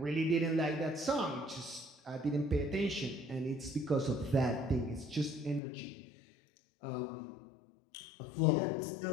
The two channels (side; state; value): right; drops out; at 5.6 s